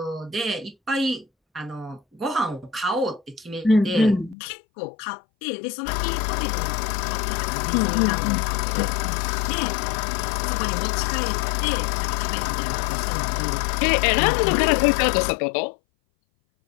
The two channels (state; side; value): drops out; right; at 4.4 s